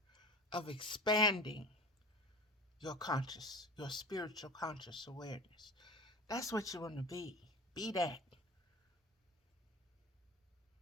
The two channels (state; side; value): normal; both; correlation 0.35